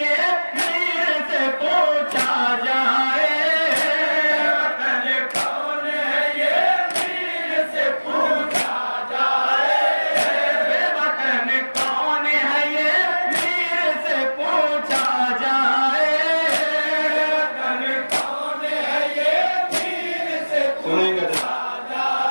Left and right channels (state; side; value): inverted; both; correlation -1.00